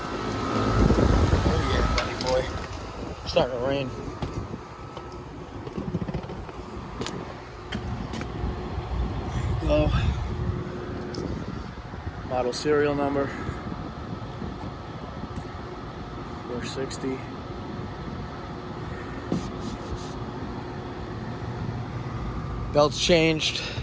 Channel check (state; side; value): identical; both; correlation 1.00